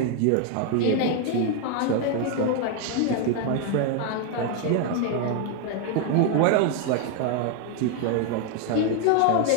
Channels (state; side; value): different; both; correlation 0.01